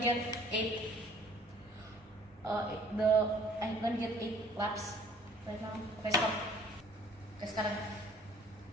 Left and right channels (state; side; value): normal; both; correlation 0.55